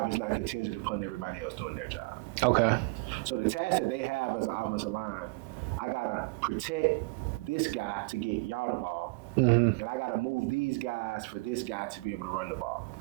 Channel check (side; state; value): left; quieter; 27.1 dB